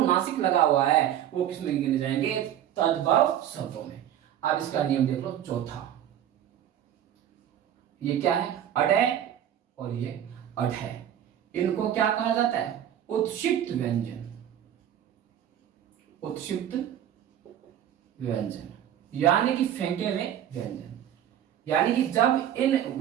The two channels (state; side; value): quieter; left; 10.7 dB